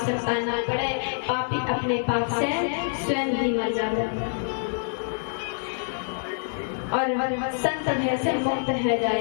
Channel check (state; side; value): silent; right; digital silence